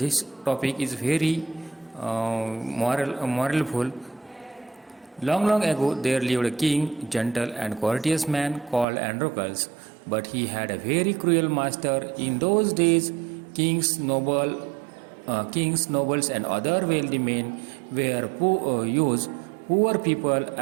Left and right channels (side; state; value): left; drops out; at 8.8 s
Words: topic is very moralful. Long ago there lived a king, gentle and courteous man called Androcles, but he had a very cruel master. In those days, kings, nobles, and other wealthy men were used poor people